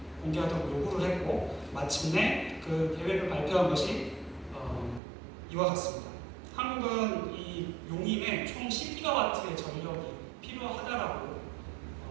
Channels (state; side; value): drops out; left; at 5.0 s